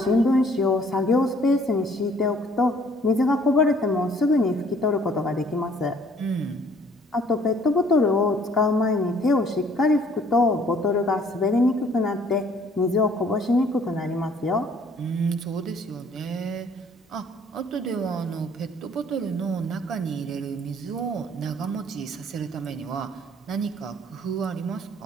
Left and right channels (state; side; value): normal; both; correlation 0.59